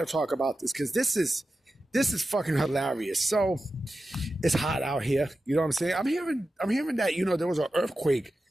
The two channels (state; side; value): normal; both; correlation 0.92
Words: talk about this because this is fucking hilarious. So it's hot out here. You know what I'm saying? I'm hearing that, you know, there was an earthquake.